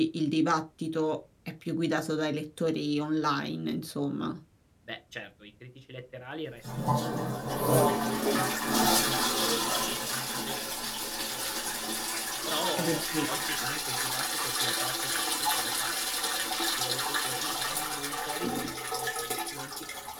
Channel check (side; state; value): both; identical; correlation 1.00